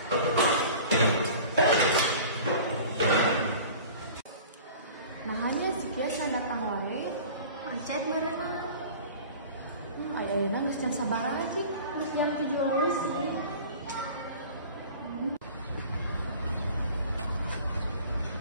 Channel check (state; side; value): inverted; both; correlation -0.42